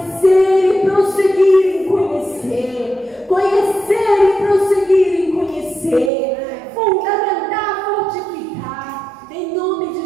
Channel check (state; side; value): drops out; left; at 6.1 s